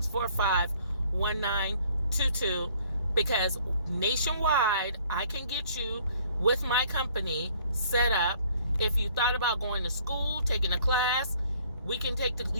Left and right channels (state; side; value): inverted; both; correlation -0.59